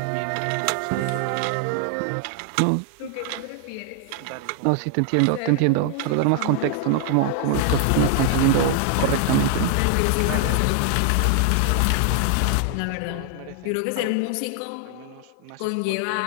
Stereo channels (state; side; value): different; both; correlation 0.00